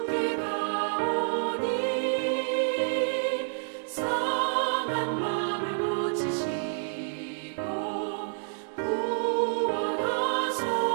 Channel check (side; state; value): left; silent; digital silence